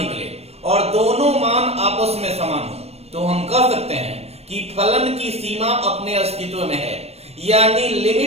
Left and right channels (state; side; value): late; left; 0.30 ms